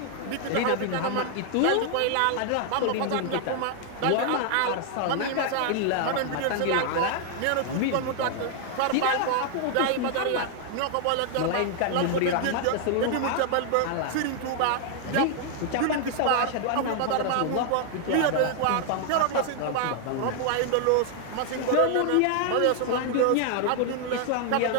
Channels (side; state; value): both; different; correlation 0.00